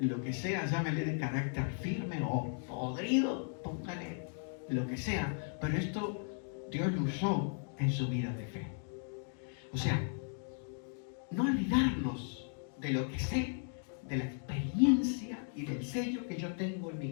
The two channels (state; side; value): silent; right; 54 dB below the other